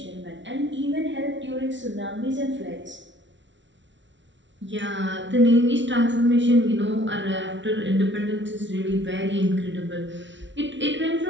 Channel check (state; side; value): late; left; 0.54 ms